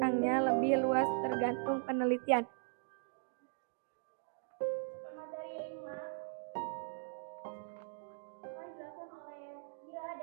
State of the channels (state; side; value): silent; left; digital silence